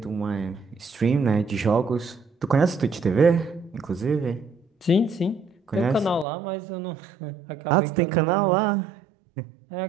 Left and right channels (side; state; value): left; drops out; at 6.2 s